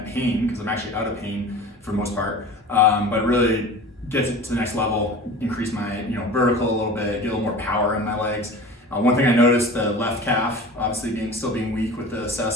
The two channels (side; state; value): both; normal; correlation 0.37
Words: pain, because I'm actually out of pain for the most part, but really get it to the next level, increase my vertical a little bit, get a little more power in my legs. One thing I noticed, the left calf, obviously still being weak with the